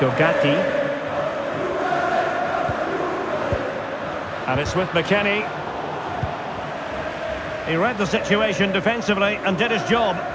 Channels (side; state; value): both; identical; correlation 1.00